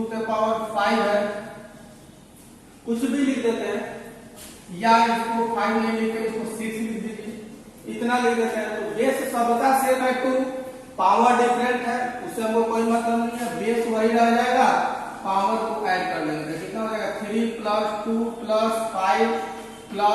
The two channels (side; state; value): both; identical; correlation 1.00